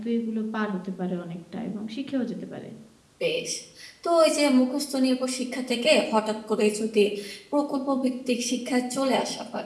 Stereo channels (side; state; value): both; identical; correlation 1.00